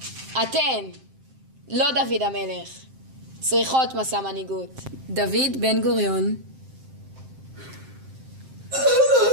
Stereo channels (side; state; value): left; late; 7.6 ms